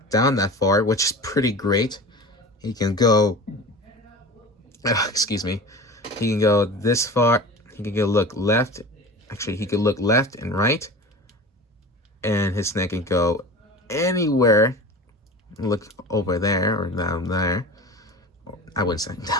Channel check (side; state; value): both; normal; correlation 0.34